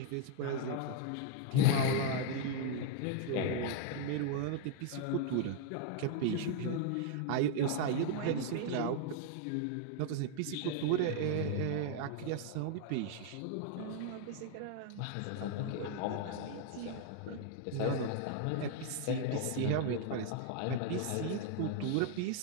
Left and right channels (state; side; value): different; both; correlation 0.00